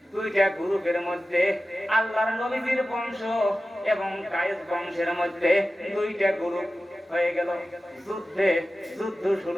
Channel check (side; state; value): both; normal; correlation 0.95